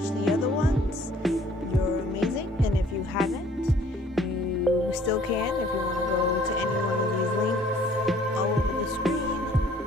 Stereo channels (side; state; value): both; normal; correlation 0.57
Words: the other ones, you're amazing, and if you haven't, you still can. If you want to go to any one of these links all over the screen,